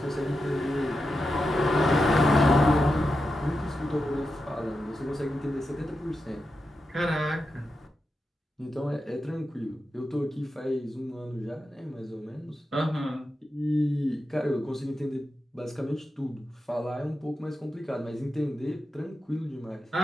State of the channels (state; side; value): normal; both; correlation 0.89